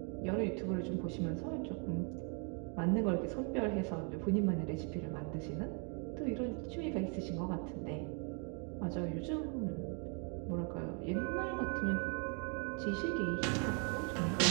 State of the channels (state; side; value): quieter; left; 37.7 dB